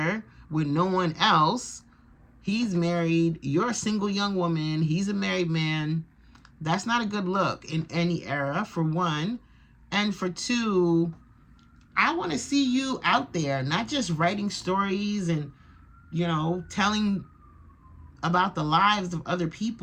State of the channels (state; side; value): identical; both; correlation 1.00